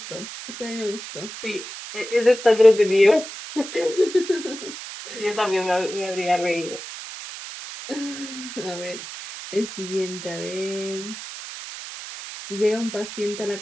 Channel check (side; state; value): right; noise; hiss, 11 dB below the sound